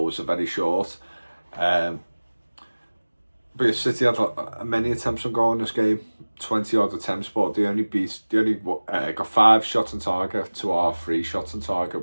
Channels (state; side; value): inverted; both; correlation -1.00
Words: are very short. But City had many attempts on goal in this game, 20 odd attempts, but they only got 5 shots on target to our 3 shots on